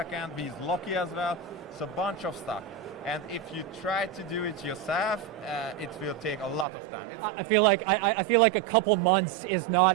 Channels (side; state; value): left; drops out; at 6.7 s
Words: We use Loki as well. So a bunch of stuff. And if you try to do it yourself, it will take a lot of time. I feel like a couple months is